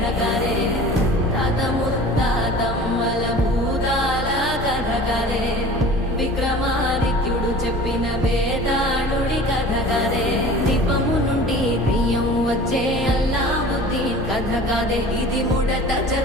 కదే తాత ముత్తాతమ్మల భూతాల కథ కదే విక్రమాదిత్యుడు చెప్పిన వేదాళుడి కథ కదే దీపము నుండి బియ్యం వచ్చే అల్లావుద్దీన్ కథ కదే ఇది ముడత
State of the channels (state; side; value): normal; both; correlation 0.42